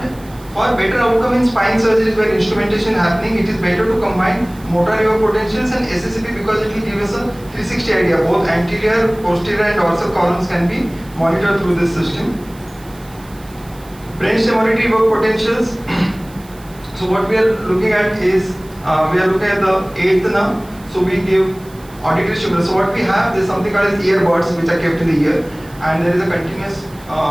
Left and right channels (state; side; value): noise; right; hiss, 24 dB below the sound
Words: for better outcome in spine surgeries where instrumentation is happening, it is better to combine motor evoked potentials and SSAP, because it will give us a 360 idea. Both anterior, posterior and dorsal columns can be monitored through this system. Brainstem auditory evoked potentials. So what we are looking at is, we are looking at the 8th nerve. So we give auditory stimulus. So what we have, there is something called as earbuds which are kept in the ear, and there is a continuous